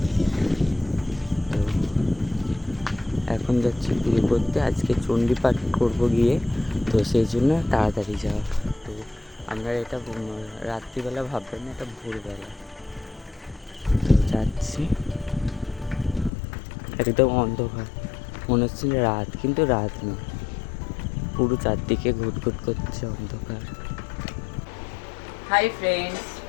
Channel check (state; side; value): drops out; right; at 16.3 s